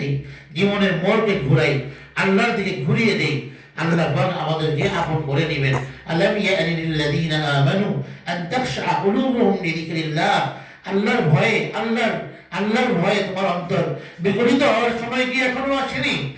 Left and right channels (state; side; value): identical; both; correlation 1.00